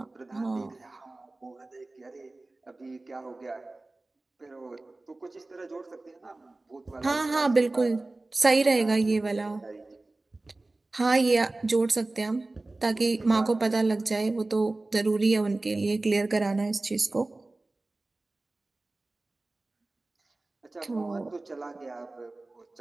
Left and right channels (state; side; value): quieter; left; 3.0 dB